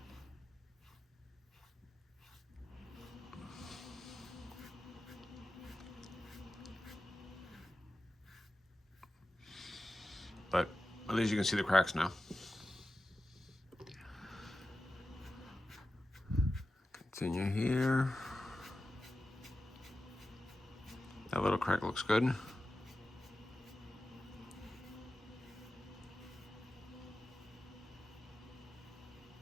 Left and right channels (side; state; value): both; normal; correlation 0.93